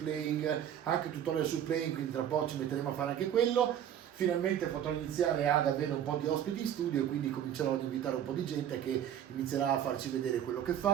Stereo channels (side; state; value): left; quieter; 10.1 dB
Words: anche tutorial sul playing, quindi tra poco ci metteremo a fare anche quello. Finalmente potrò iniziare ad avere un po' di ospiti in studio, quindi comincerò ad invitare un po' di gente che inizierà a farci vedere quello che